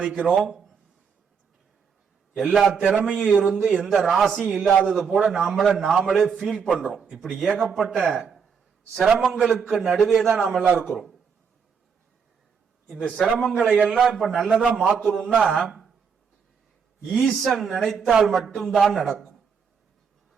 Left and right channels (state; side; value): quieter; left; 6.3 dB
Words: எல்லா திறமையும் இருந்து எந்த ராசியும் இல்லாதது போல நாமளே ஃபீல் பண்றோம். இப்படி ஏகப்பட்ட சிரமங்களுக்கு நடுவே தான் நாம எல்லாம் இருக்கிறோம். இந்த சிரமங்களை எல்லாம் இப்ப நல்லதா மாத்தணும்னா ஈசன் நினைத்தால் மட்டும்தான் நடக்கும்.